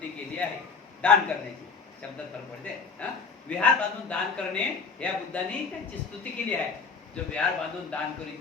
केली आहे. दान करण्याची शब्दात फरक पडते. विहार बांधून दान करणे या बुद्धांनी त्यांची स्तुती केली आहे. जो विहार बांधून दान करीत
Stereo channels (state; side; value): quieter; right; 5.1 dB